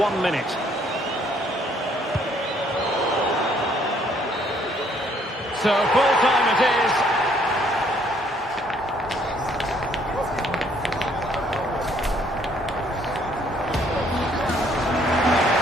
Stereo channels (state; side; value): normal; both; correlation 0.65